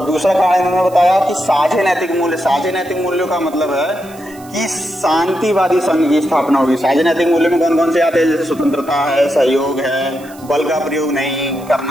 दूसरा कारण इन्होंने बताया कि साझे नैतिक मूल्य। साझे नैतिक मूल्यों का मतलब है कि शांतिवादी संघ की स्थापना होगी। साझे नैतिक मूल्य में कौन कौन से आते हैं? जैसे स्वतंत्रता है, सहयोग है, बल का प्रयोग नहीं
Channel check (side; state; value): right; noise; hiss, 23 dB below the sound